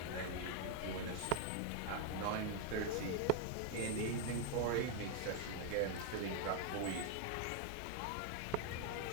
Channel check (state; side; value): different; both; correlation 0.01